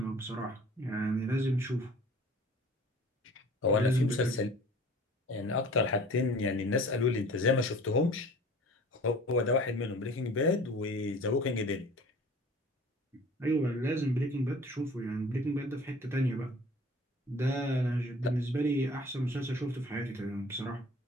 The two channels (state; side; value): normal; both; correlation 0.46